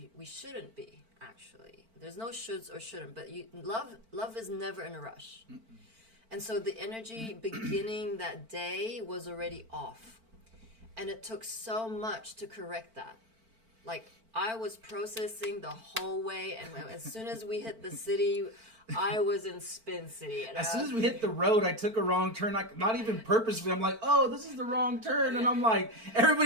shouldn't be, actually. There's no shoulds or shouldn't. But love is never in a rush. And so the energy beginning that day was already off. And it took so much to correct that. Like, I was processing the whole way, and as soon as we hit the city, I was in Spin City. And as soon as we hit the road, I took a wrong turn, like, not even purposely. I'm like, oh, this is the wrong turn. And I'm like,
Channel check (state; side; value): late; left; 4.5 ms